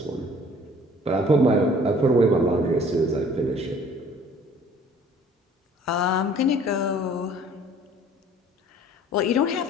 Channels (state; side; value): normal; both; correlation 0.53